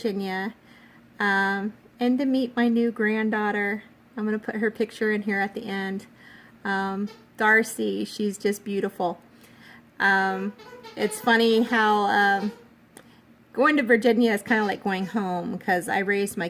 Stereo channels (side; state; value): both; identical; correlation 1.00